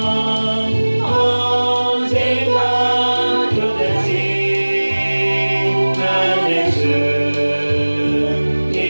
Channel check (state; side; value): inverted; both; correlation -1.00